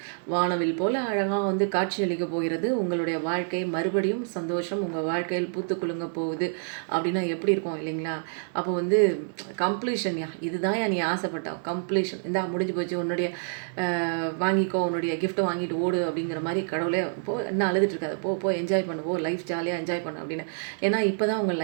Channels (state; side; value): silent; left; digital silence